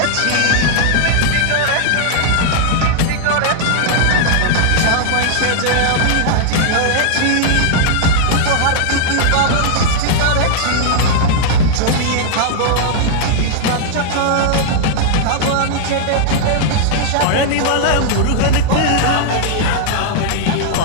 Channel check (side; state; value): both; different; correlation -0.01